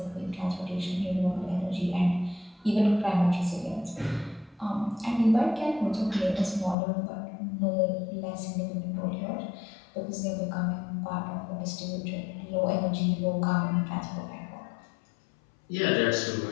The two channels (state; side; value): drops out; right; at 6.8 s